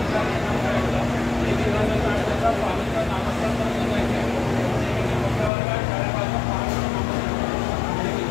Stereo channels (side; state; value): right; drops out; at 5.5 s